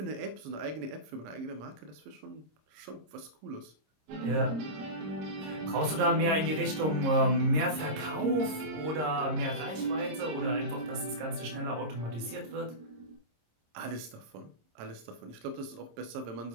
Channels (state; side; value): late; left; 26 ms